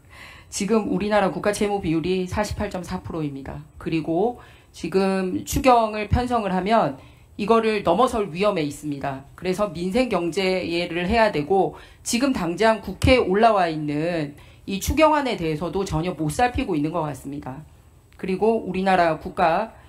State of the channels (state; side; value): identical; both; correlation 1.00